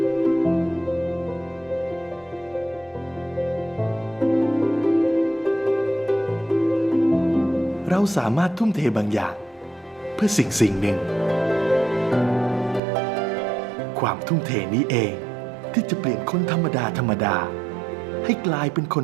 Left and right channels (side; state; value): left; drops out; at 12.8 s